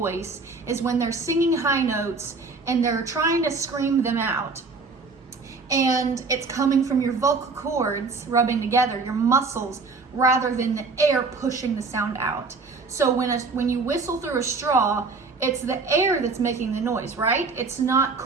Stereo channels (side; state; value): left; quieter; 4.2 dB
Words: is when they're singing high notes and they're trying to scream them out, and it's coming from your vocal cords rubbing together, your muscles, rather than the air pushing the sound out. So when you whistle through a straw, it's the air that's making the noise, right? It's not